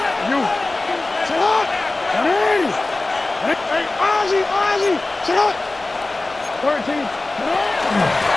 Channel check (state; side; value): quieter; right; 3.0 dB